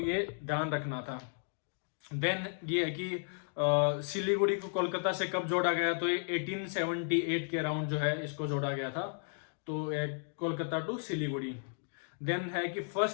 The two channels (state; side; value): silent; right; 55 dB below the other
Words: ध्यान रखना था। देन ये है कि सिलीगुड़ी को कोलकाता से कब जोड़ा गया, तो ये 1878 के अराउंड जो है इसको जोड़ा गया था, तो कोलकाता टू सिलीगुड़ी। देन है कि